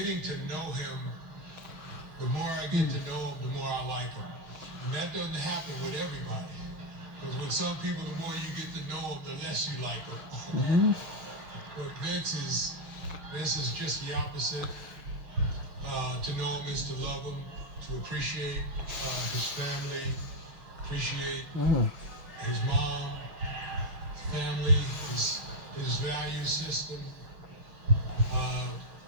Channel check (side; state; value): left; late; 6.1 ms